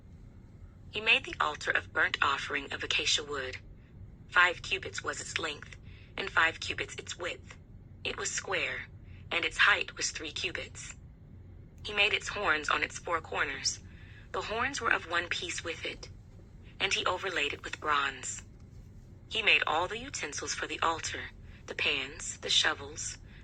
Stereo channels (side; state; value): both; identical; correlation 1.00